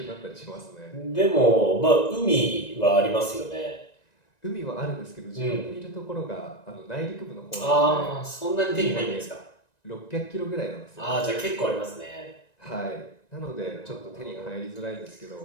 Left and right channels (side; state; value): right; late; 1.9 ms